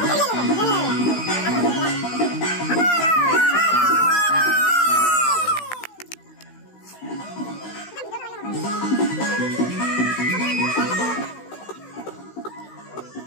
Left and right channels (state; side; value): late; right; 16 ms